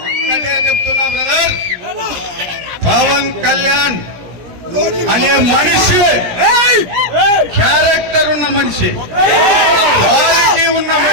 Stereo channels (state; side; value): late; left; 17 ms